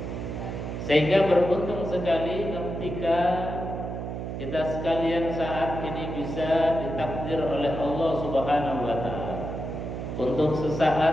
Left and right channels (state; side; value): noise; right; hum, 5 dB below the sound